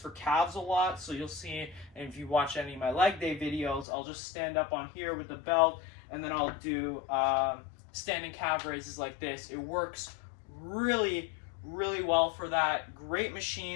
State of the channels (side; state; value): right; drops out; at 3.9 s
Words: calves a lot. So you'll see, and if you watch any of my leg day videos, I'll just stand up on here with the belt, and then I'll do standing calf raises like this. It works really well for that. Great